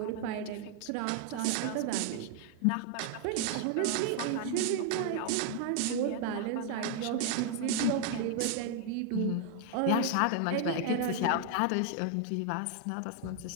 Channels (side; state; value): both; different; correlation 0.00